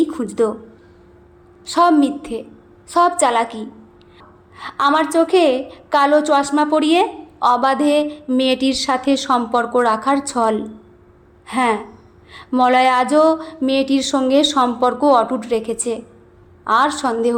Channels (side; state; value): both; identical; correlation 1.00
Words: খুঁজত। সব মিথ্যে, সব চালাকি। আমার চোখে কালো চশমা পরিয়ে অবাধে মেয়েটির সাথে সম্পর্ক রাখার ছল। হ্যাঁ, মলয় আজও মেয়েটির সঙ্গে সম্পর্ক অটুট রেখেছে, আর সন্দেহ